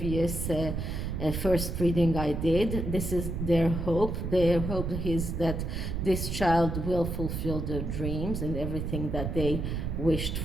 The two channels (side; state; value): right; noise; rumble, 3 dB below the sound